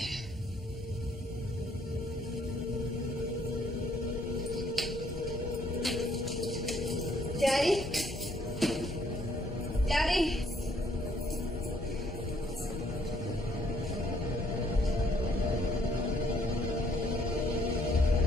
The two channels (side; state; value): both; normal; correlation 0.66